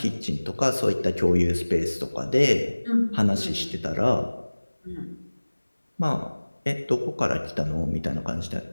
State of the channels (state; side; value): inverted; both; correlation -1.00